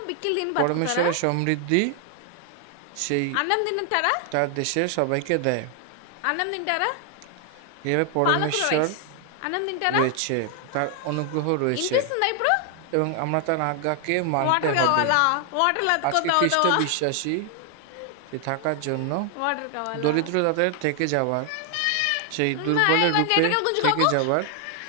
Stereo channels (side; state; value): both; different; correlation 0.00